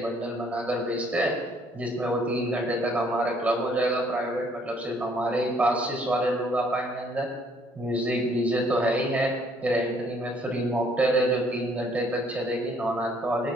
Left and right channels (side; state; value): both; normal; correlation 0.64